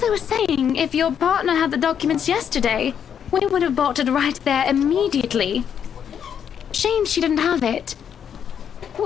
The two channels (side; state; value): right; quieter; 8.3 dB